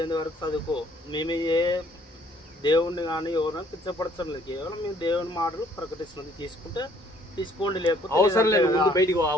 వరకు చదువుకో. మేము ఏ దేవుణ్ణి కానీ ఎవరైనా పిచ్చపడతాం లేదు, కేవలం మేము దేవుని మాటలు ప్రకటిస్తున్నది. తీసుకుంటే తీసుకోండి, లేకపోతే అవసరం లేదు. ముందు బయటికి ఆ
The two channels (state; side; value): normal; both; correlation 0.61